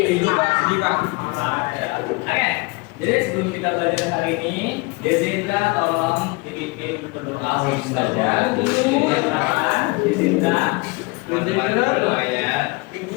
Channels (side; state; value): right; quieter; 26.9 dB